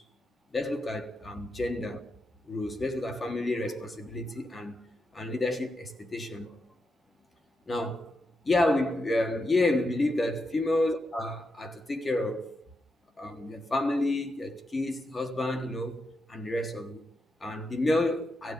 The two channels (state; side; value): normal; both; correlation 0.85